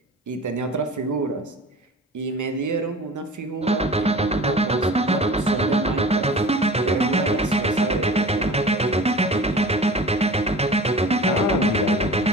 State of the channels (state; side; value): normal; both; correlation 0.39